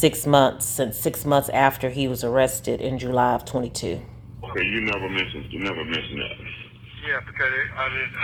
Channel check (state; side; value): identical; both; correlation 1.00